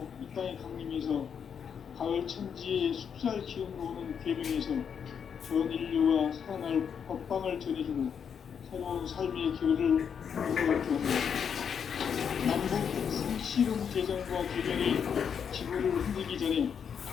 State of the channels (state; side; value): quieter; right; 7.3 dB